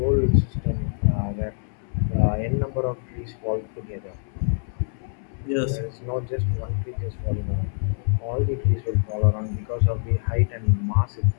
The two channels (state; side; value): silent; right; 62 dB below the other